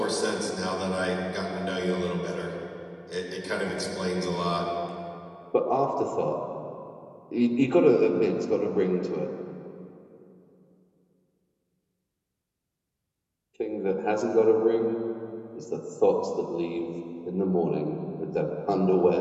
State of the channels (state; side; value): identical; both; correlation 1.00